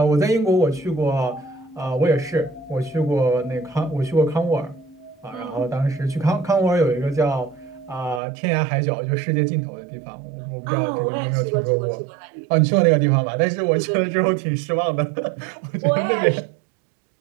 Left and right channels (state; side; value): drops out; left; at 8.2 s